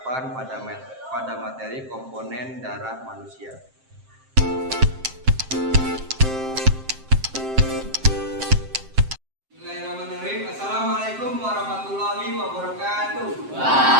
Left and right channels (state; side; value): late; left; 7.6 ms